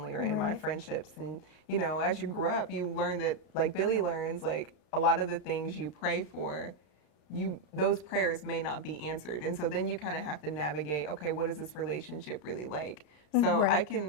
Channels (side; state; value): right; late; 33 ms